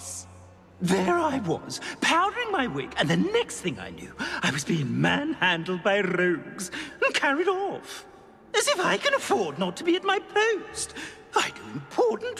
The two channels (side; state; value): both; identical; correlation 1.00